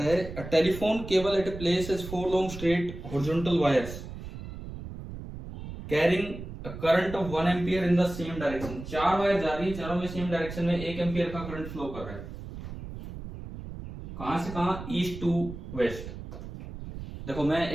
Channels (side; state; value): right; noise; rumble, 10 dB below the sound